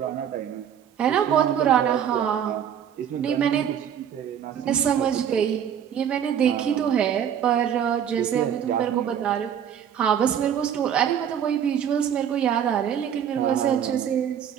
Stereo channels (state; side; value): quieter; left; 8.9 dB